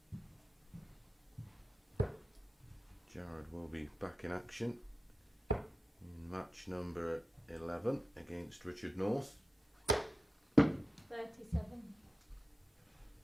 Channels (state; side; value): normal; both; correlation 0.91